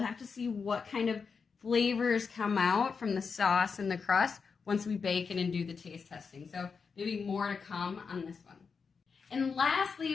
have to see what kind of flavors come out from the sauce and the crust once we bake it and do the taste testing. So maybe more to come on this one. And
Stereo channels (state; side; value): quieter; right; 5.4 dB